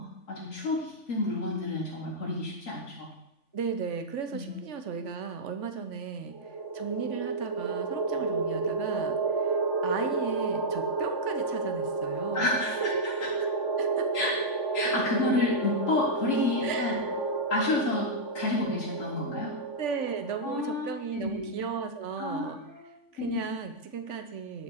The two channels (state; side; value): late; right; 3.5 ms